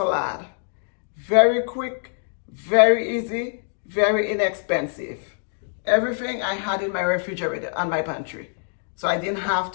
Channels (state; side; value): silent; right; digital silence